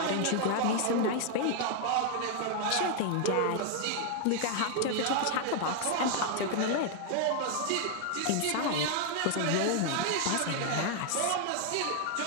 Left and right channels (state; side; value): different; both; correlation 0.00